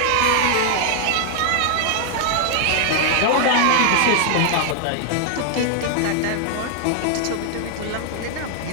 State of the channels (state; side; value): different; both; correlation 0.00